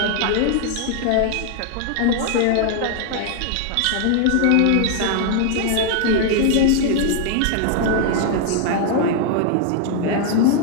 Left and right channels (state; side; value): different; both; correlation 0.00